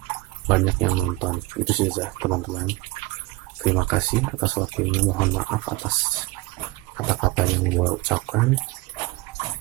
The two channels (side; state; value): left; quieter; 21.4 dB